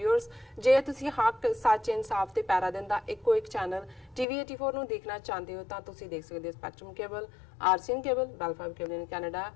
ਜੇ ਤੁਸੀਂ ਹੱਕ ਸੱਚ ਇਨਸਾਫ ਤੇ ਪੈਰਾ ਦਿਨ ਦਾ ਇੱਕੋ ਇੱਕ ਚੈਨਲ ਟੀਵੀ 84 ਨੂੰ ਦੇਖਣਾ ਚਾਹੁੰਦੇ ਹੋ ਤਾਂ ਤੁਸੀਂ ਦੇਖ ਸਕਦੇ ਹੋ spectrum cable, RCN cable, Bell Fibe cable in Canada,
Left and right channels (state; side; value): drops out; right; at 4.2 s